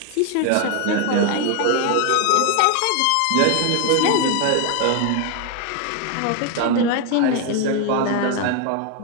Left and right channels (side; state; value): both; different; correlation 0.01